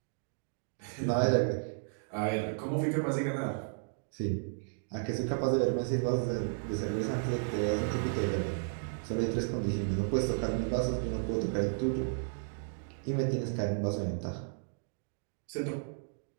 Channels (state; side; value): silent; left; digital silence